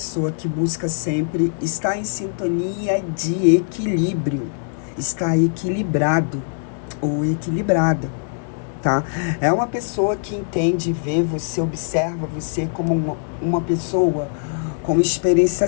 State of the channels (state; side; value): silent; right; digital silence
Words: que busca sempre estar em sintonia de equilíbrio, está equilibrado ou equilibrada, tá? É uma pessoa que entende, vê você, observa você como uma pessoa com